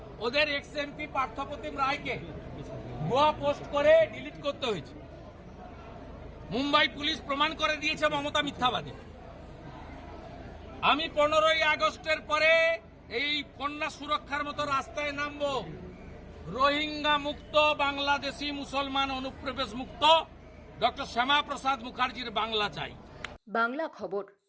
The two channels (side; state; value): both; identical; correlation 1.00